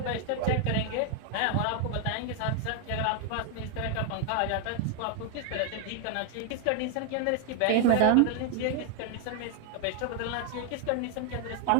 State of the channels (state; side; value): different; both; correlation 0.00